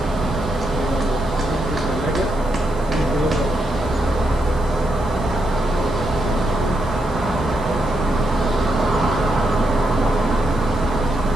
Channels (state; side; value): noise; right; hiss, 24 dB below the sound